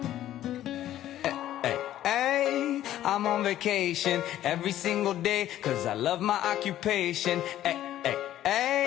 I'm on vacation every single day cause I love my occupation.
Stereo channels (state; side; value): quieter; right; 12.8 dB